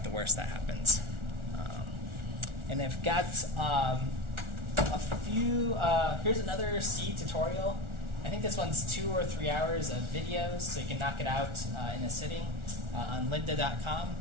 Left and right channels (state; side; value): late; left; 1.4 ms